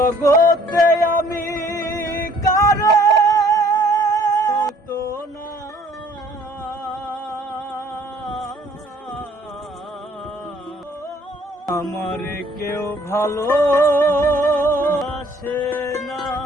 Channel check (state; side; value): normal; both; correlation 0.58